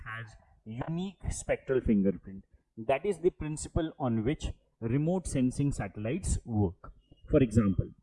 has unique spectral fingerprint. That is the principle on which remote sensing satellites work. For example,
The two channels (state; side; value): identical; both; correlation 1.00